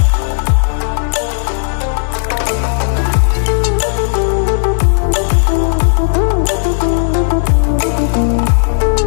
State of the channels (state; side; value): silent; right; digital silence